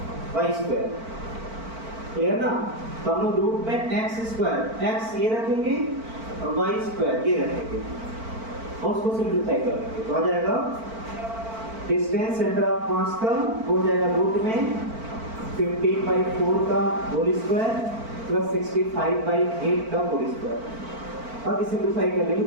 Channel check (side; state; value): left; late; 4.5 ms